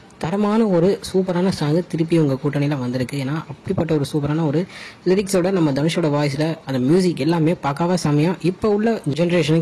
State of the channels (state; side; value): identical; both; correlation 1.00